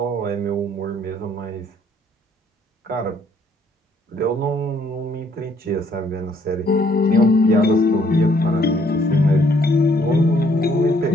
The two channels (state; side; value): normal; both; correlation 0.66